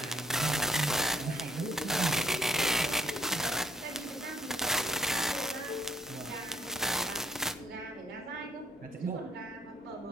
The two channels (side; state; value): both; normal; correlation 0.65